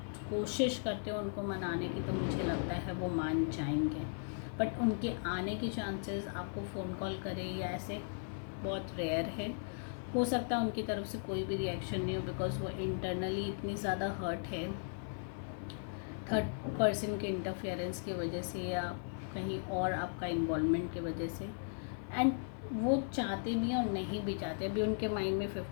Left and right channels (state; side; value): silent; right; 53 dB below the other